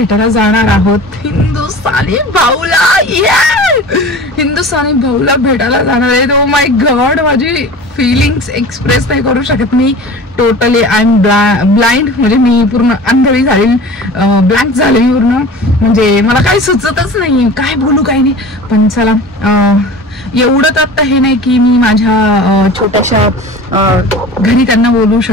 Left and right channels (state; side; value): normal; both; correlation 0.38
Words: जाणार आहोत हिंदुस्थानी भाऊला। हिंदुस्थानी भाऊला भेटायला जाणार आहे। ओ माय गॉड, माझी फिलिंग्स एक्सप्रेस नाही करू शकत मी। टोटली आय एम ब्लाइंड, म्हणजे मी पूर्ण अंधळी झाली, ब्लँक झाली पूर्ण, म्हणजे मला काही सुचतच नाही काय बोलू काय नाही। पण चला, एवढंच आता हे नाही की मी माझ्या छोट्याशा घरी त्यांना बोलू